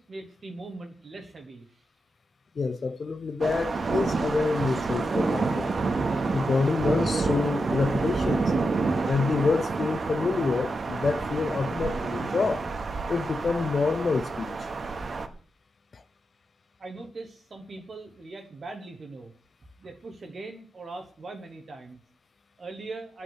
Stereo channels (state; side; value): normal; both; correlation 0.87